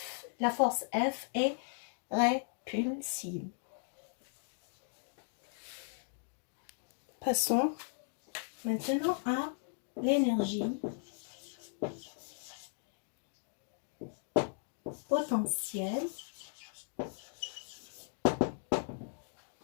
la force F est répulsive. Passons maintenant à l'énergie potentielle,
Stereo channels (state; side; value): silent; right; digital silence